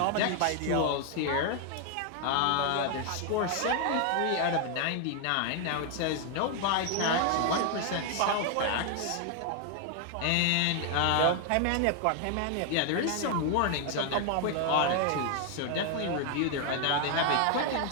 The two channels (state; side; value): different; both; correlation 0.00